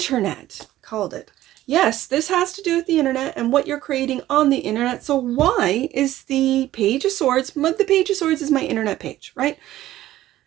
Called it. Yes, this has to do with the internet and what you're creating on the internet. So why is the Page of Swords, the Page of Swords is my internet page, right?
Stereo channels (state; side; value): quieter; left; 14.4 dB